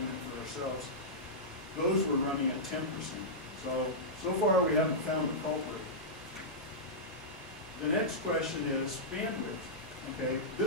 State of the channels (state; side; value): normal; both; correlation -0.12